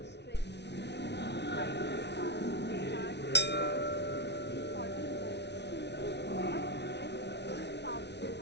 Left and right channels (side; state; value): right; late; 0.50 ms